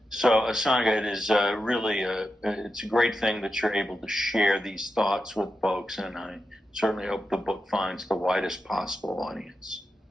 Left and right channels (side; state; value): both; normal; correlation 0.89